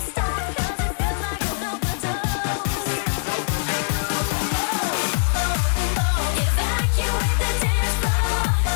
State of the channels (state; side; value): silent; right; 58 dB below the other